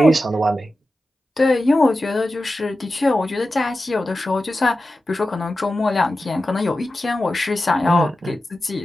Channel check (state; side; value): normal; both; correlation 0.93